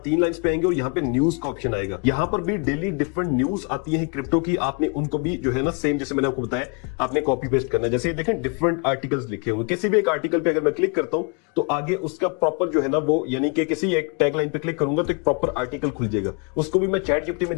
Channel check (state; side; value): quieter; right; 35.0 dB